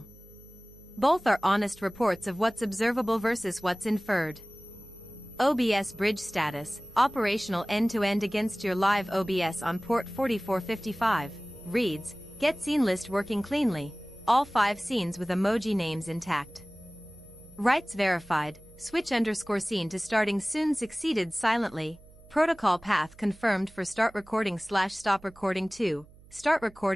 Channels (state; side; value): noise; right; hum, 24 dB below the sound